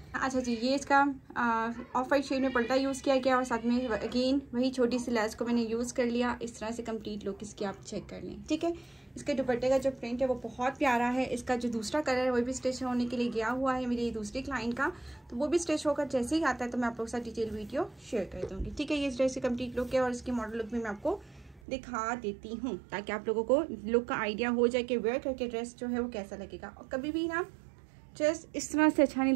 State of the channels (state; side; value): drops out; left; at 21.6 s